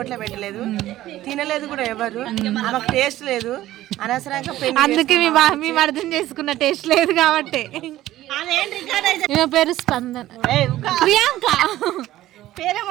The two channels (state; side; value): quieter; left; 14.8 dB